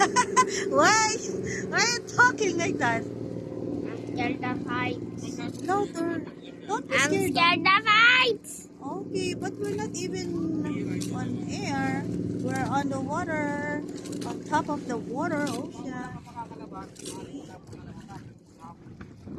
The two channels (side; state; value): both; identical; correlation 1.00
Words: Why? Why are you talking like that? I'm scared of heights. Louder. Don't be I'm scared. scared of heights. Okay, but we're not even on air. We're on the water. On top of the water ocean.